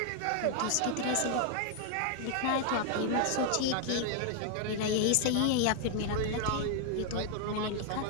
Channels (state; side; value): different; both; correlation 0.00